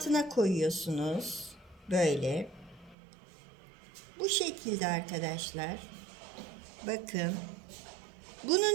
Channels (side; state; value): left; drops out; at 3.0 s